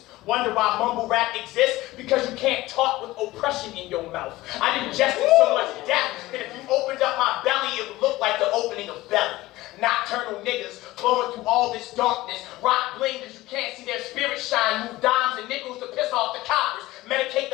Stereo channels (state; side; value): quieter; right; 18.0 dB